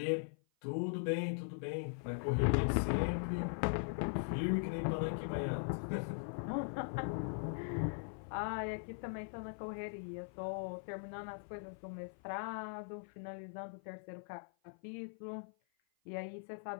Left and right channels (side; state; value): right; silent; 51 dB below the other